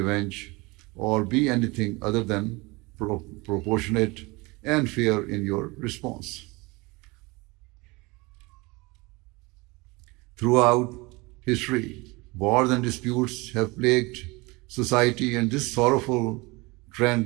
or be anything other than proportionate and fair in your response. Throughout history, wars and disputes have plagued society, and this sorrowful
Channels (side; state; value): left; quieter; 24.7 dB